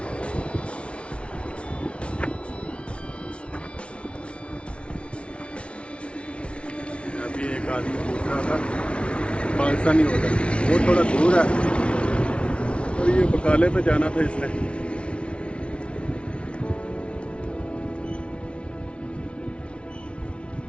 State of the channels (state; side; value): late; right; 0.059 ms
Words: अभी एक आदमी पूछ रहा था पाकिस्तानी होटल, वो थोड़ा दूर है, और ये बकाले पे जाना था इसने।